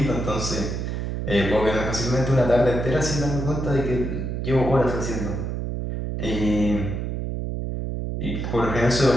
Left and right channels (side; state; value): right; noise; hum, 3 dB below the sound